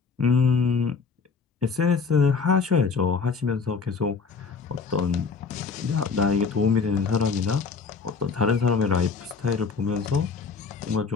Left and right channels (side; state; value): right; quieter; 5.1 dB